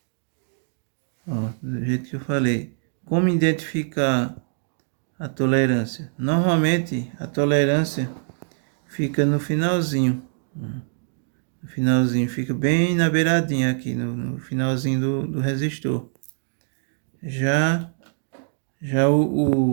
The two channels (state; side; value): silent; left; digital silence